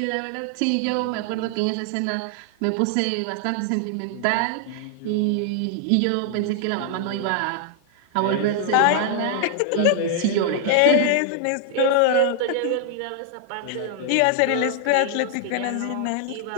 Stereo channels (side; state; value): both; different; correlation 0.00